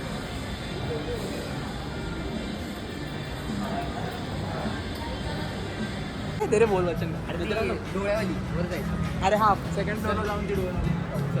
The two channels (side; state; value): both; identical; correlation 1.00